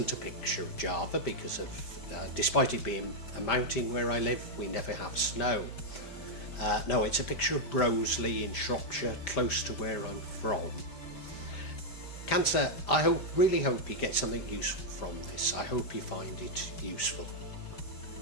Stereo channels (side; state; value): right; late; 5.0 ms